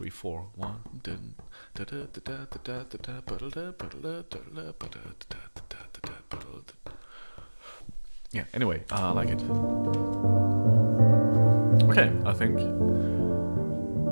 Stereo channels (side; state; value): both; inverted; correlation -1.00